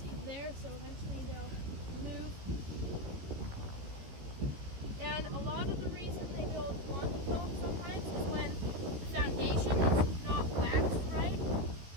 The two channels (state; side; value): late; left; 15 ms